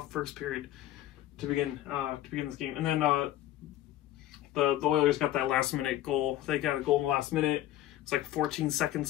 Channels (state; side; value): quieter; right; 14.0 dB